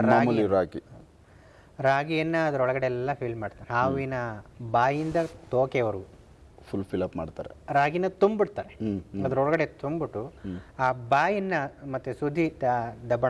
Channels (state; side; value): identical; both; correlation 1.00